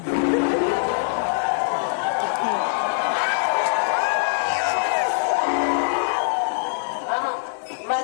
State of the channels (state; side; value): silent; right; digital silence